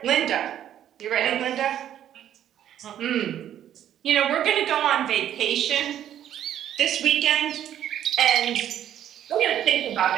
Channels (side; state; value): left; quieter; 10.8 dB